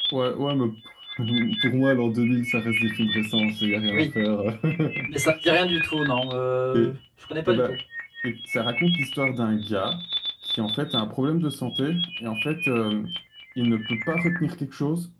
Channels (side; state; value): both; identical; correlation 1.00